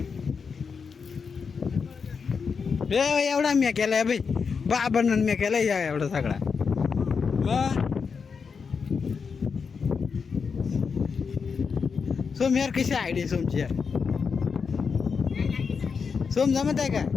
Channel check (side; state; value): right; quieter; 5.7 dB